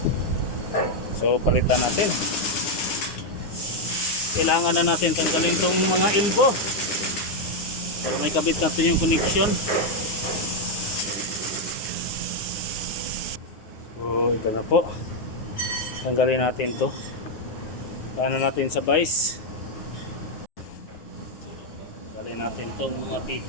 So palitan natin. Kailangan na natin tanggalin tong mga elbow para may kabit natin yung connection. So ito na po. Tanggalin natin to. Paano natin sa vice? Tanggalin natin tong mga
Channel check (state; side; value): late; right; 9.6 ms